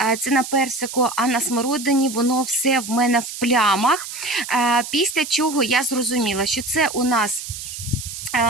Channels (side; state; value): right; noise; hiss, 9 dB below the sound